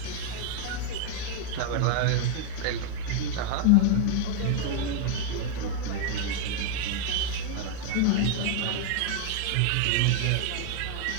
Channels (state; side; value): different; both; correlation 0.01